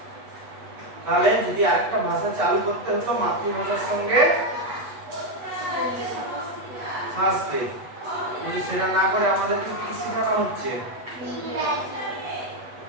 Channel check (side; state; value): left; late; 8.1 ms